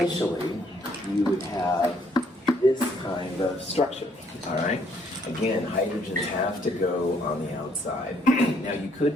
you would have this kind of structure, all right? Again, hydrogens have to go on the outside. Now you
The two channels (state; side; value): normal; both; correlation 0.67